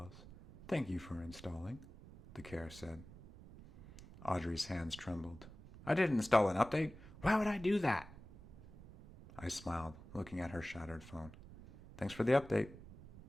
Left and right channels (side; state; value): right; noise; rumble, 17 dB below the sound